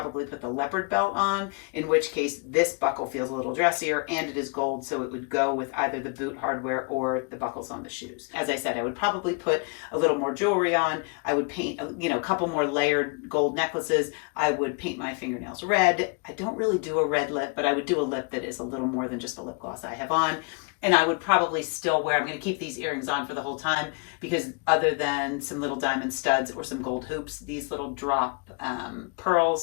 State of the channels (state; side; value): quieter; right; 32.6 dB